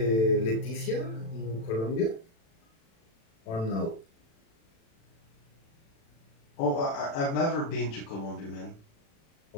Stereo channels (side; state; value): right; late; 36 ms